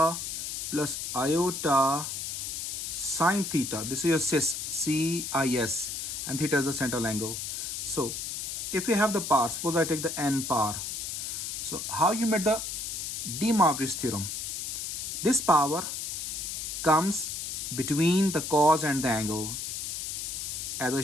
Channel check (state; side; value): noise; left; hiss, 4 dB below the sound